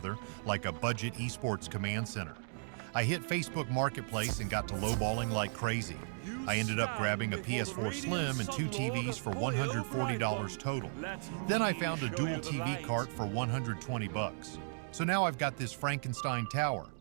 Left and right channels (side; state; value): left; silent; digital silence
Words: like a budget esports command center. I hit Facebook Marketplace and got to lowballing like crazy. I ended up grabbing a PS4 Slim and 2 TVs for $140 total. Then I found a dual TV cart for $120. So now I've got this Frankenstein tower,